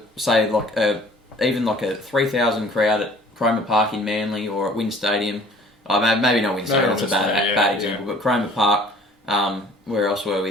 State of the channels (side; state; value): both; normal; correlation 0.52